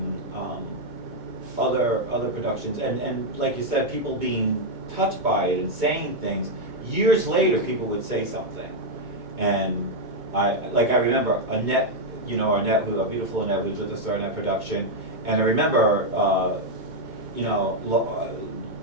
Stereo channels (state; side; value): late; left; 2.2 ms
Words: other productions, and like you said, people being touched by it and saying things. Years later, people would say something, and I remember Annette, you know, a beautiful Annette, who was with us during that production, and I remember, you know,